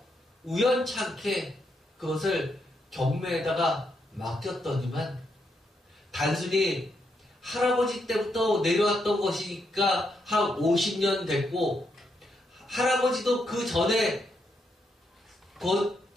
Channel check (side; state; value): both; normal; correlation 0.79